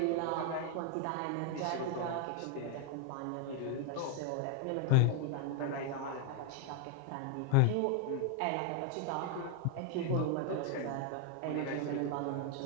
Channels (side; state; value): both; different; correlation 0.01